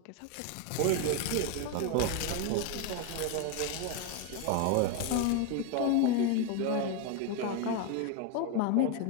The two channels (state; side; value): different; both; correlation 0.01